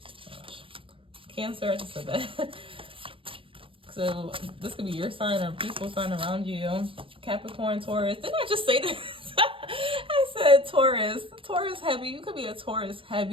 Gosh. Cancer, I just said that. So this could be your sign or a peaceful sign around you. Capricorn, Taurus. Didn't I just say this? I said Taurus. Taurus heavy. You could be a Taurus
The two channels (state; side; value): late; left; 0.25 ms